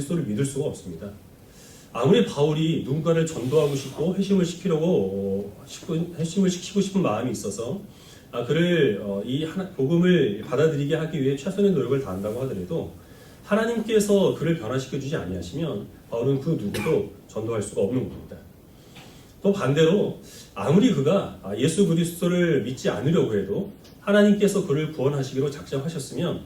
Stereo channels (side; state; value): both; identical; correlation 1.00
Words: 믿을 수가 없습니다. 아무리 바울이 누군가를 전도하고 싶고 회심을 시키고 싶은 마음이 있어서 그를 이 복음을 받아들이게 하기 위해 최선의 노력을 다한다고 하더라도 하나님께서 그를 변화시켜 주지 아니하시면 바울은 그 누구도 전도할 수가 없는 겁니다. 또 반대로 아무리 그가 예수 그리스도를 믿지 않으려고 해도 하나님께서 그를 구원하시기로 작정하셨으면